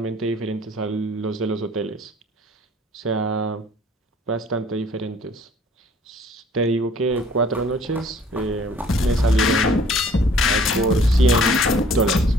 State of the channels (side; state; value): both; normal; correlation 0.55